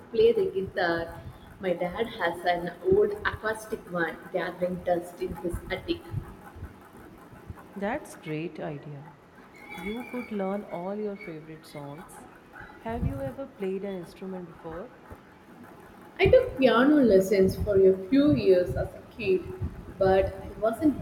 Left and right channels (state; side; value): identical; both; correlation 1.00